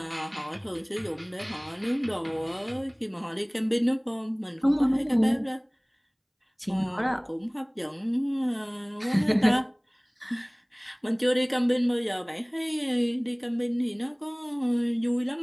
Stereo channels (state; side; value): identical; both; correlation 1.00